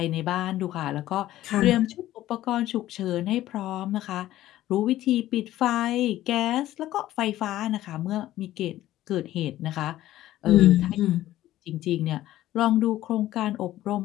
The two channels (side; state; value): right; quieter; 14.4 dB